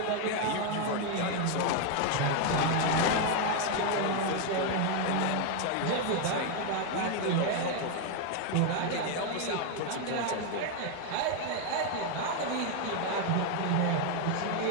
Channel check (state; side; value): different; both; correlation 0.01